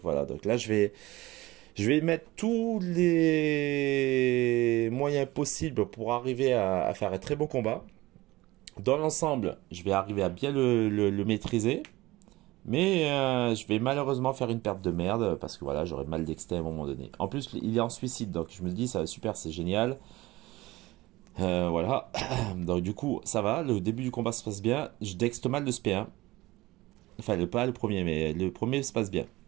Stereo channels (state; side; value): quieter; left; 19.2 dB